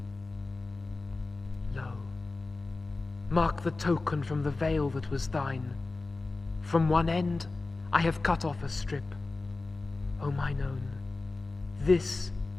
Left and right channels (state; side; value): quieter; right; 3.5 dB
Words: Lo, mark the token from the veil that was thine. From one end I have cut off a strip. O mine own, this